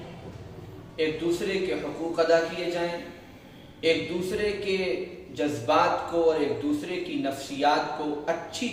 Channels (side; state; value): both; identical; correlation 1.00